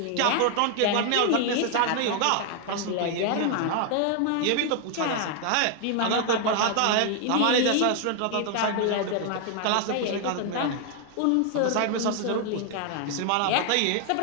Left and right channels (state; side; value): different; both; correlation 0.00